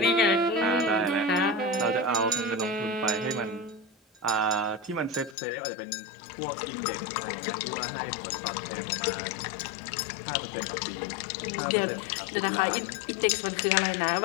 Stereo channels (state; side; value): drops out; right; at 5.4 s